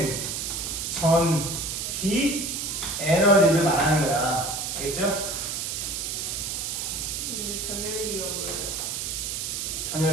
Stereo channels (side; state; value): right; noise; hiss, 3 dB below the sound